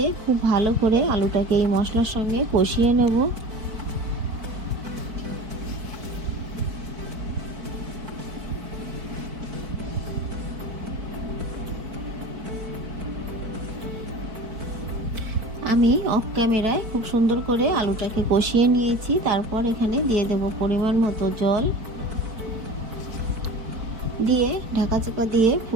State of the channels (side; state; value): left; late; 4.5 ms